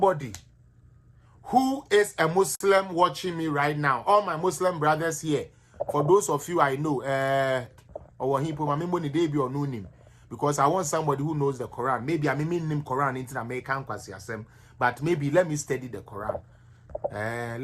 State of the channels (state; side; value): identical; both; correlation 1.00